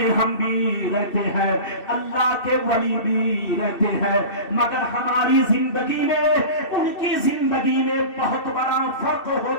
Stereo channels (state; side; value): late; right; 2.7 ms